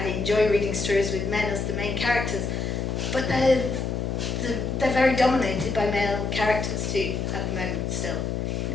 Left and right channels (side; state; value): left; noise; hum, 1 dB below the sound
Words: enjoy reading stories with men as the main characters. But they're very dominated by male characters too at the moment still.